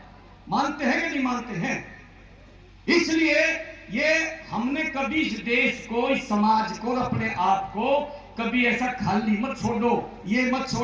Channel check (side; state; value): both; identical; correlation 1.00